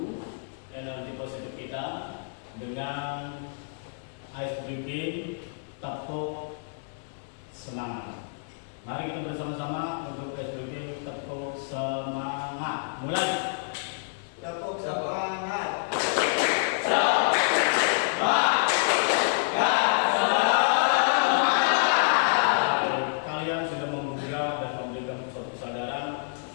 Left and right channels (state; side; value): silent; right; digital silence